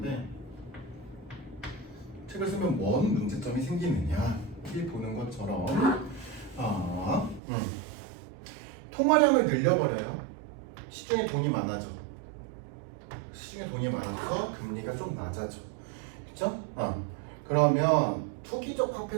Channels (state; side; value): drops out; left; at 7.4 s